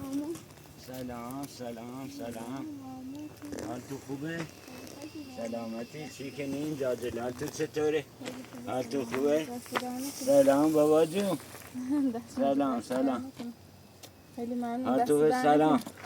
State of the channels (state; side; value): identical; both; correlation 1.00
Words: سلام حال تو خوبه؟ سلامتی چی کنین جاجل حال تو چطوره؟ حال تو خوبه؟ سلام بابا جون سلام خیلی ممنون. حال تو سلام